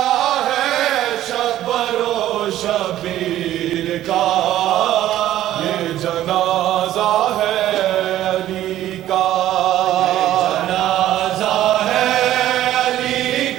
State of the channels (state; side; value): quieter; left; 13.3 dB